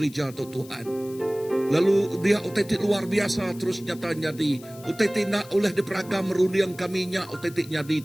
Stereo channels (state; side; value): noise; left; hiss, 21 dB below the sound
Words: tu Tuhan. Lalu dia utetik luar biasa terus nyata nyadi. Utetik nak oleh diperagam meruliang kaminya utetik nyadi